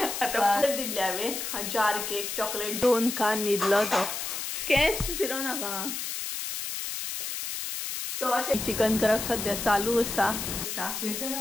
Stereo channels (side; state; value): left; noise; hiss, 4 dB below the sound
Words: आता दिले हांवें जार केक चॉकलेट 2 खान न्हिदलो तो केस फिरो नाका सो अशें चिकन करप सद्या चालू आसा